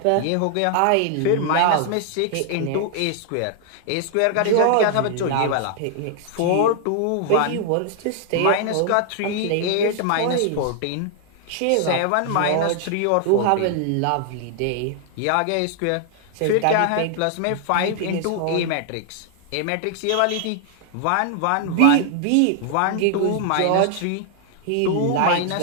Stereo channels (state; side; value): different; both; correlation 0.00